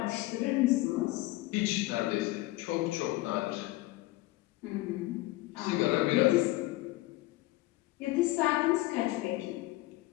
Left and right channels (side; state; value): right; quieter; 18.8 dB